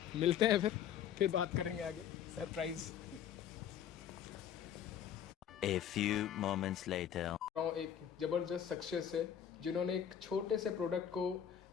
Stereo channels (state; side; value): quieter; right; 9.2 dB